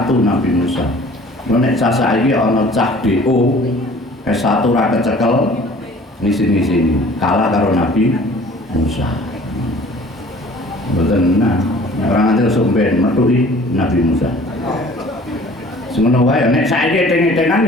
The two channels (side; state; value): both; normal; correlation 0.49